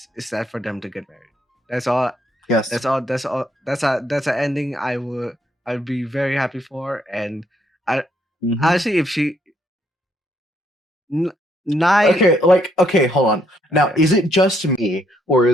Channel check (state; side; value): normal; both; correlation 0.72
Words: is that for them to get married. That's all. Yes. That's all. That's an ending I'd be very happy for. And I honestly, if she n- nine. Okay, hold on. Now, Okay. is it just me, or